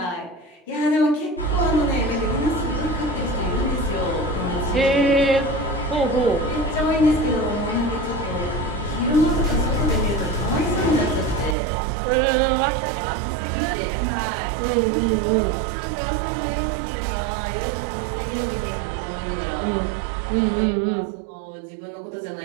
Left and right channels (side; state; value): left; drops out; at 11.6 s